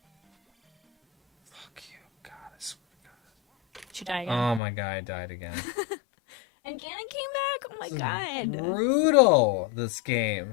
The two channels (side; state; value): right; drops out; at 4.6 s